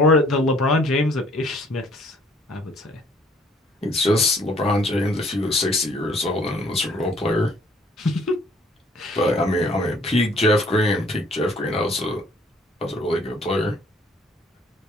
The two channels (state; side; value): normal; both; correlation 0.60